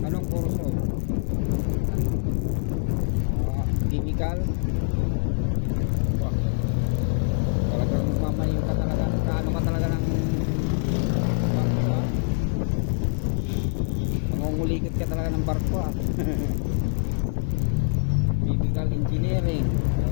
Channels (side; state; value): right; silent; digital silence